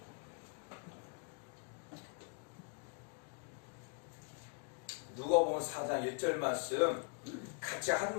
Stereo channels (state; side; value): quieter; right; 37.5 dB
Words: 누가복음 4장 1절 말씀 같이